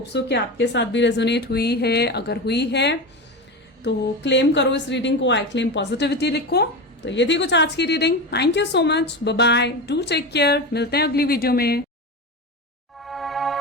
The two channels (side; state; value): both; normal; correlation 0.22